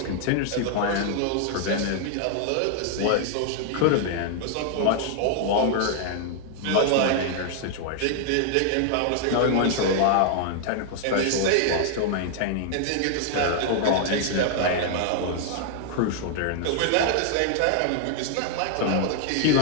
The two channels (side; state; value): both; different; correlation 0.00